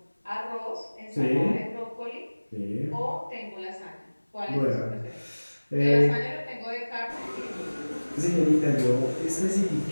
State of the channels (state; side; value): inverted; both; correlation -1.00